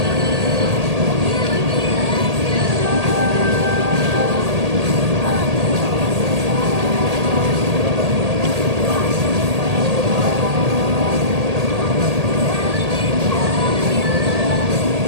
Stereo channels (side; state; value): left; late; 1.8 ms